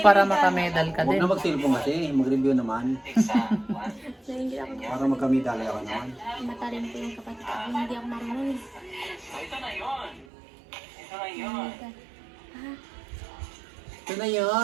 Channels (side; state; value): left; drops out; at 10.2 s